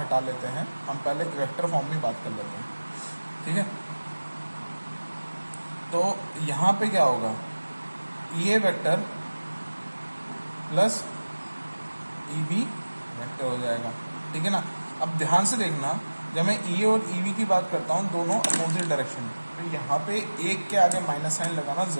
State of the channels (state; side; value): inverted; both; correlation -1.00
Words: लेते हैं, हम पहले वेक्टर फॉर्म में बात कर लेते हैं, ठीक है। तो यहाँ पे क्या होगा, E A vector plus E B vector हो जाएगा, ठीक है ना। अब ध्यान से देखना, जब मैं ई ए और ई बी की बात करता हूँ दोनों अपोजिट डायरेक्शन में, तो यहाँ पे एक के आगे माइनस साइन लगाना